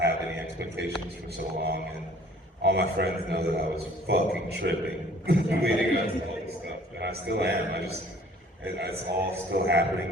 any expectations for so long, and all my friends know that I was fucking tripping leading up to all this stuff, and I still am. It's all still happening,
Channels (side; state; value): both; normal; correlation 0.54